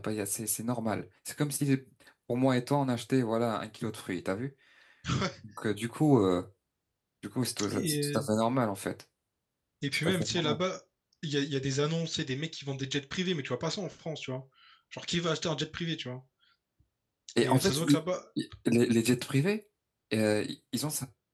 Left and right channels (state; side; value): identical; both; correlation 1.00